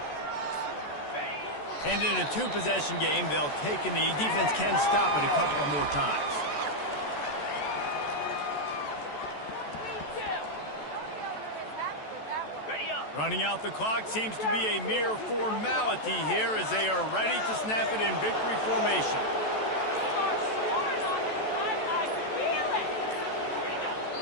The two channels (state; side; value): late; right; 14 ms